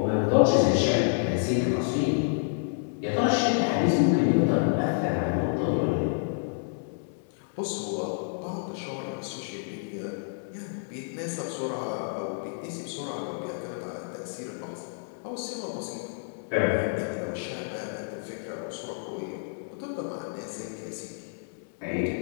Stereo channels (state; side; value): silent; right; 59 dB below the other